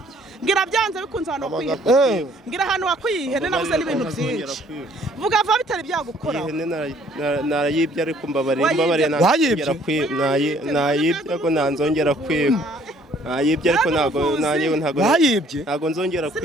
mbwira byanze bikunze ahantu wakuye mbwira ahantu wakuye ihene nabuze n'ibintu byinshi vuga vuba bitari byagukora ihene narayibye ariko mbabariye nayibye ariko nanzongera kwiba nayibye ariko ntago nzongera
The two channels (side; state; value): both; normal; correlation 0.60